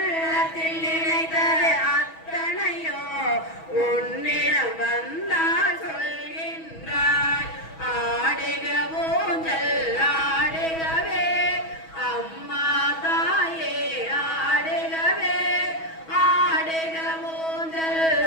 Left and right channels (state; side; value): late; right; 6.2 ms